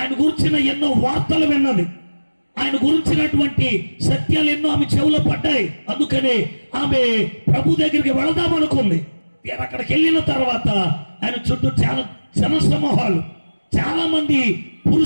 గురించిన ఎన్నో వార్తలు విన్నది. ఆయన గురించినటువంటి సత్యాలు ఎన్నో ఆమె చెవులో పడ్డాయి. అందుకనే ఆమె ప్రభు దగ్గరికి వెళదామనుకుంది. అక్కడికి వెళ్ళిన తర్వాత ఆయన చుట్టూ చాలా జనసమూహాలు, చాలా మంది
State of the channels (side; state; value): both; inverted; correlation -1.00